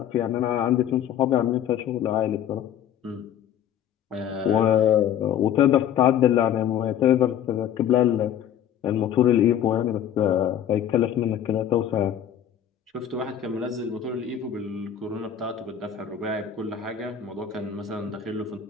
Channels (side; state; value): right; quieter; 9.7 dB